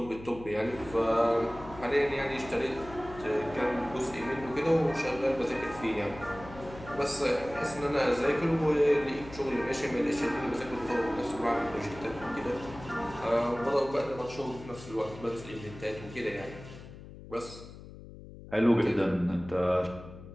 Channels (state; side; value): noise; left; hum, 15 dB below the sound